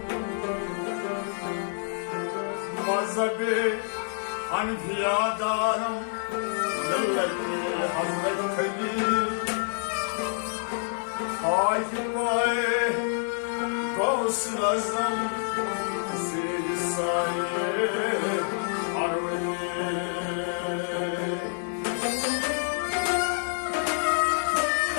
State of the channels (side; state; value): right; silent; digital silence